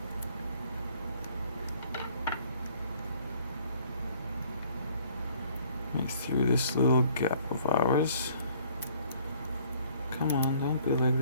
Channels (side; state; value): both; inverted; correlation -0.58